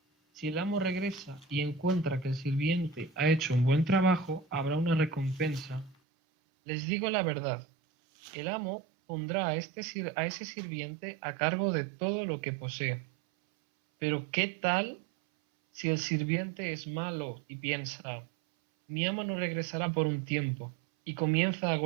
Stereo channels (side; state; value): left; drops out; at 6.0 s